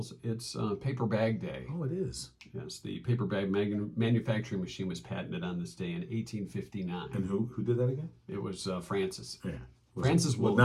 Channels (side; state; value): both; identical; correlation 1.00